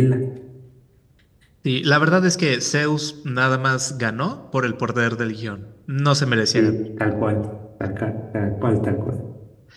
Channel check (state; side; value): identical; both; correlation 1.00